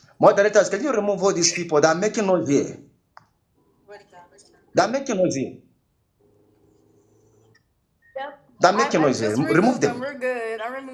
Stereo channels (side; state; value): both; identical; correlation 1.00